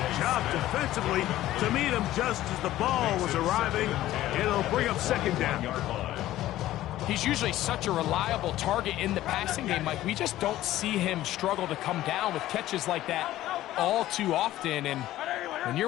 job defensively to meet him just as the ball was arriving. It'll bring up second down. He's usually such a reliable target in the passing game, Mike. We just don't see him struggle to come down with catches like that all too often. And when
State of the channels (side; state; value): right; quieter; 14.6 dB